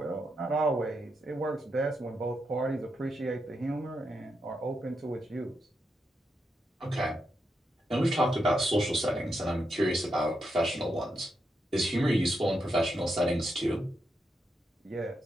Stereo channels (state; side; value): normal; both; correlation 0.83